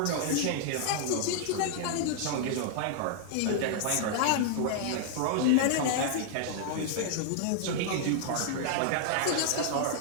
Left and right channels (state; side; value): different; both; correlation -0.01